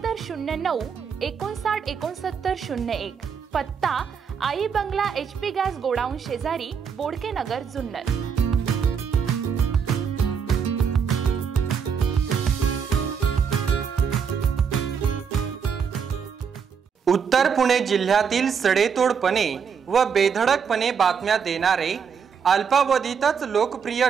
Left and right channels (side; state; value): left; quieter; 6.7 dB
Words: 59 69 01, पत्ता आई बंगला HP गॅस गोडाऊन शेजारी, बोडके नगर, जुन्नर. उत्तर पुणे जिल्ह्यातील सडेतोडपणे व बेधडकपणे बातम्या देणारे, अल्पावधीतच लोकप्रिय